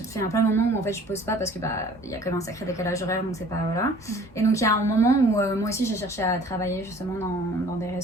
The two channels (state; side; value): normal; both; correlation 0.51